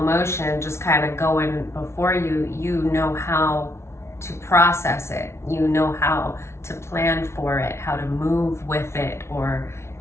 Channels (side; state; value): right; late; 0.13 ms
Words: just kind of going before you. You know how to process it. You know how to plan for it, how to move with it, or,